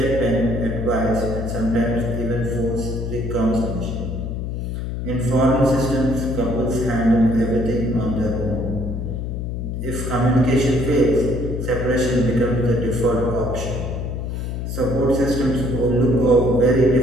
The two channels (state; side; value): noise; left; hum, 4 dB below the sound